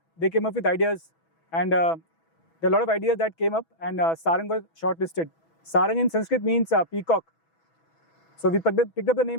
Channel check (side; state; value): right; late; 6.1 ms